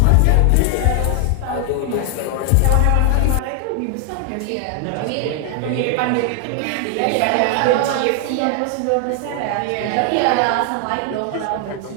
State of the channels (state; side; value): different; both; correlation 0.00